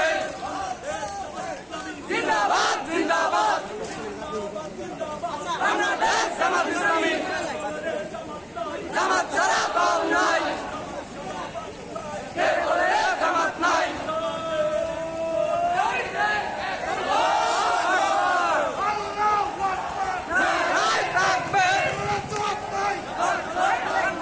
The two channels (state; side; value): identical; both; correlation 1.00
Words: জিন্দাবাদ জিন্দাবাদ বাংলাদেশ জামাত ইসলামী জামাত ছাড়া দল নাই কে বলে জামাত নাই